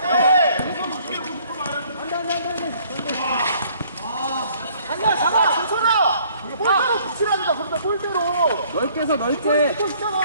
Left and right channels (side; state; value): both; inverted; correlation -0.60